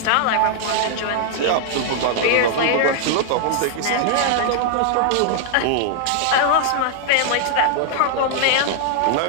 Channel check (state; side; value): different; both; correlation 0.00